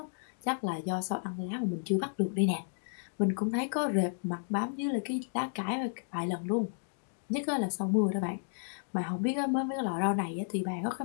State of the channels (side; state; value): right; silent; digital silence